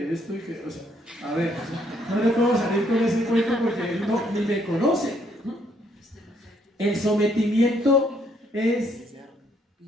esto y que, o sea, a ver, no le puedo salir con ese cuento porque él no, ni me conoce. El sometimiento es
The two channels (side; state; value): both; normal; correlation 0.69